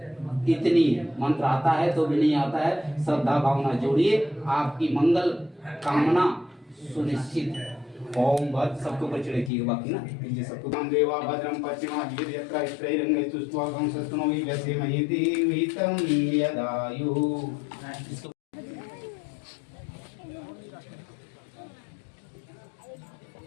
इतनी मंत्र आता है तो भी नहीं आता है। श्रद्धा भावना जोड़िए, आपकी मंगल कामना सुनिश्चित है। ओम भद्र सबको ऊपर चढ़े किए बाकी ना कीजिए सबको। नाम देवा भद्रम पश्चिमा वीर यत्रा स्त्रैरंगे सुस्वागम सस्तनो हि वैसे महिति विहितं यदायु।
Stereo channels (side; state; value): right; drops out; at 9.5 s